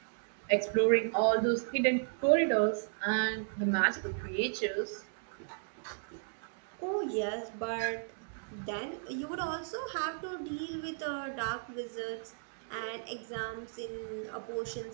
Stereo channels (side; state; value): left; silent; digital silence